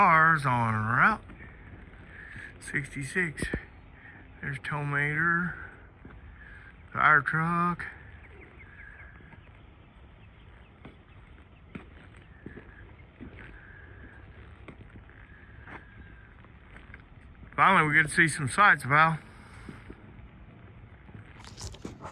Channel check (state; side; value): identical; both; correlation 1.00